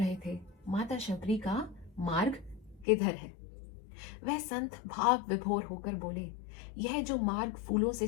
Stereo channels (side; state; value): right; drops out; at 2.9 s